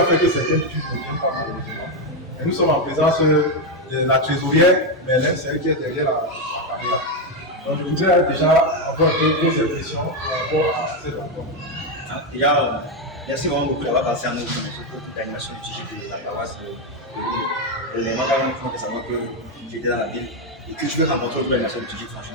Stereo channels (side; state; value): both; normal; correlation 0.06